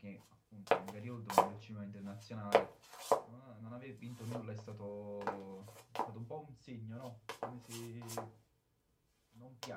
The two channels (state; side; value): identical; both; correlation 1.00